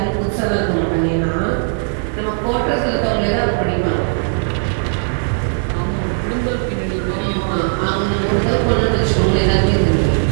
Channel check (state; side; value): silent; left; 66 dB below the other